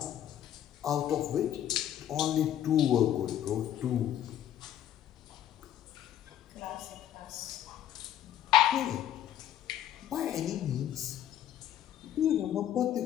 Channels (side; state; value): right; quieter; 11.2 dB